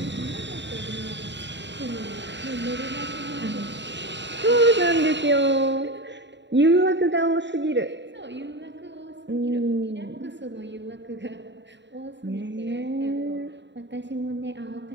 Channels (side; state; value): left; late; 0.52 ms